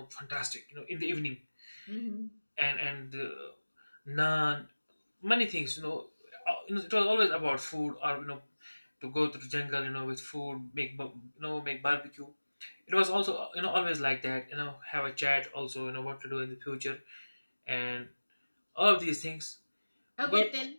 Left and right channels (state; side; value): inverted; both; correlation -1.00